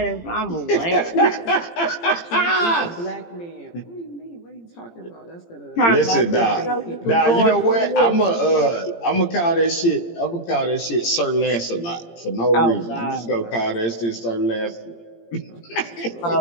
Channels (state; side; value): late; right; 17 ms